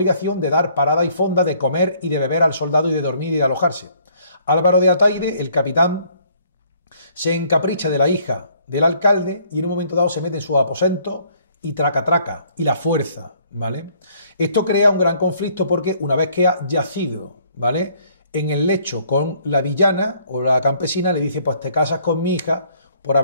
de dar parada y fonda, de comer y de beber al soldado y de dormir y de alojarse. Álvaro de Ataide, el capitán, se encapricha de la hija del alcalde y en un momento dado se mete en su aposento y traca y la fuerza, ¿vale? Esto crea un gran conflicto porque una vez que ha yacido, ¿vale?, en el lecho con la villana o la campesina, le dice, pues te casas con mi hija por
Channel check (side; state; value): both; inverted; correlation -0.63